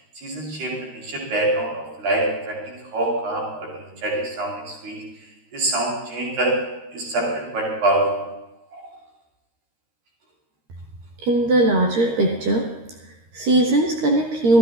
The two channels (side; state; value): left; late; 13 ms